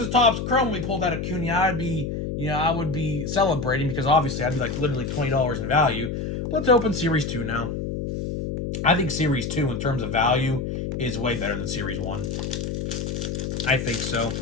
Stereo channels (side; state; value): left; noise; hum, 3 dB below the sound